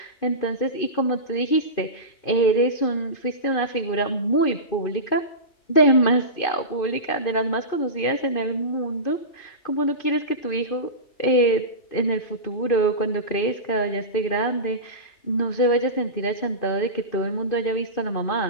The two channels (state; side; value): late; right; 2.5 ms